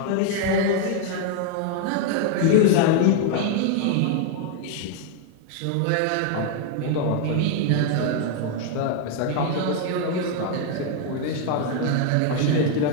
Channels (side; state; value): both; different; correlation 0.00